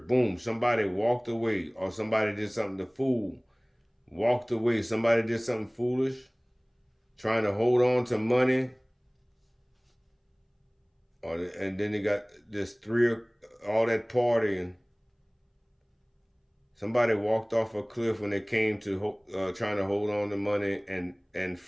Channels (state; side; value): identical; both; correlation 1.00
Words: Boom. Somebody walked away, or somebody did something to fool. Walked away. Somebody did something foolish. Trying to hold on to money. And then they got this all that partying. Somebody walked off a cliff when they came to trying to hold on to money and